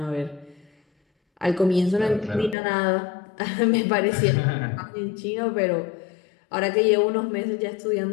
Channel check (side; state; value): right; drops out; at 2.6 s